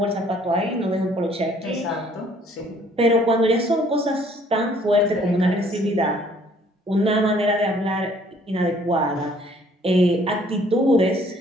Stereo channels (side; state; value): both; normal; correlation 0.60